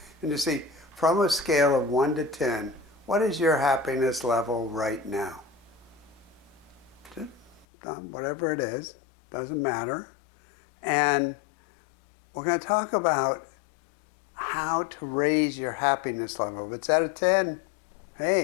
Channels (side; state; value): right; drops out; at 7.7 s